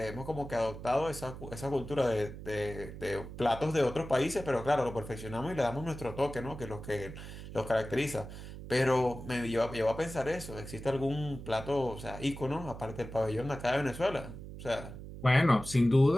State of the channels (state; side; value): noise; right; hum, 11 dB below the sound